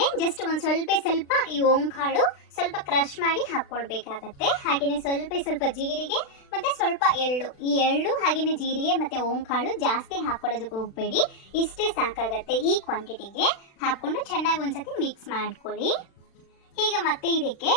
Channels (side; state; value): right; late; 36 ms